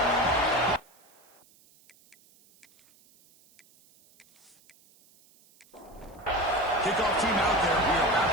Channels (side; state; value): right; noise; hiss, 30 dB below the sound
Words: Kickoff team out there. We are about